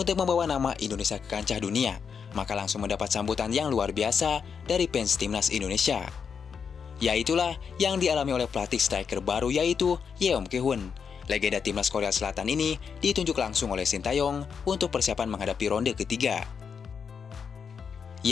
membawa nama Indonesia ke kancah dunia, maka langsung mendapat sambutan yang luar biasa dari fans timnas Indonesia. Yaitulah yang dialami oleh pelatih striker baru yaitu Yeom Ki-hun. Legenda timnas Korea Selatan ini ditunjuk langsung oleh Shin Tae-yong untuk persiapan menghadapi ronde ketiga.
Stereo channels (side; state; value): right; quieter; 6.4 dB